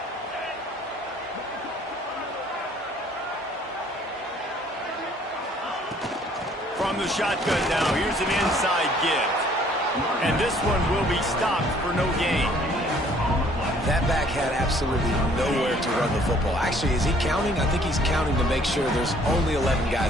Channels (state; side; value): normal; both; correlation 0.59